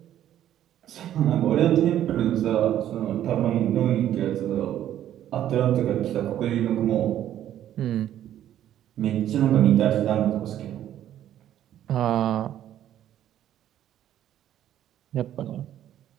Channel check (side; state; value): left; quieter; 11.5 dB